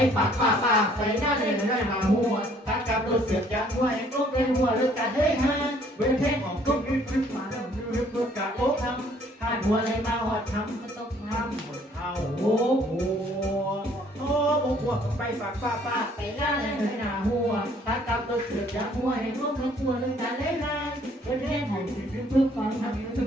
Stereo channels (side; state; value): both; normal; correlation 0.61